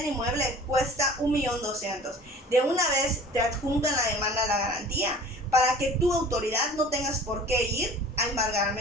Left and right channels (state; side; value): normal; both; correlation 0.45